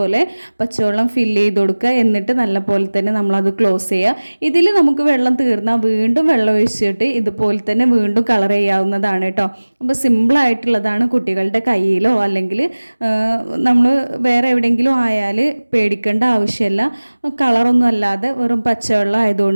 പച്ചവെള്ളം ഫില്ല് ചെയ്ത് കൊടുക്കുക. എന്നിട്ട് നല്ലപോലെ തന്നെ നമ്മളത് ക്ലോസ് ചെയ്യുക. ഇതിൽ നമുക്ക് വെള്ളം തീർന്നാൽ വീണ്ടും വെള്ളം ഒഴിച്ചിട്ട് ഇതുപോലെ തന്നെ വീണ്ടും കളർ ചെയ്യാവുന്നതാണ് കേട്ടോ. അപ്പോൾ സിമ്പിളായിട്ടുള്ളതാണ്. കുട്ടികളുടെ കയ്യിലോ അല്ലെങ്കിൽ നമ്മൾ വേറെ എവിടെയെങ്കിലും ആയാൽ പേടിക്കേണ്ട ആവശ്യമില്ല. കളറൊന്നും അല്ലാതെ വെറും പച്ചവെള്ളം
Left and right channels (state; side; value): inverted; both; correlation -1.00